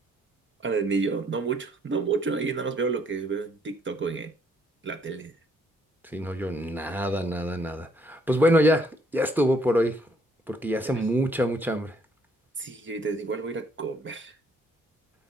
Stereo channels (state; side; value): normal; both; correlation 0.66